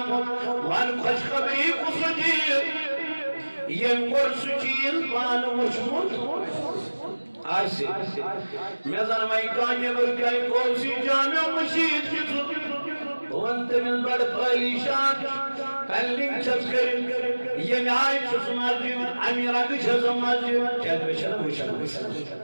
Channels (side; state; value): both; inverted; correlation -1.00